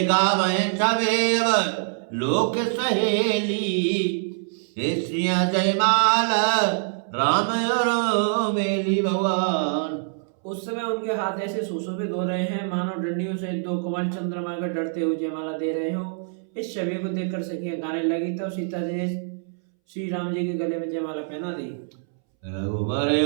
गावे छवेव लोक सहेली, हे श्रिया जयमाला राम और मेली भगवान। उस समय उनके हाथ ऐसे सुशोभित हो रहे हैं मानो डंडियों से दो कमल चंद्रमा का डरते हुए जयमाला दे रहे हो। इस छवि को देखकर सखियां गाने लगी, तब सीता जी ने श्री राम जी के गले में जयमाला पहना दी। रघुवर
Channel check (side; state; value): left; silent; 62 dB below the other